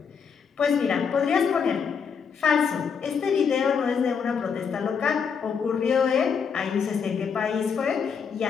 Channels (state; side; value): quieter; right; 6.4 dB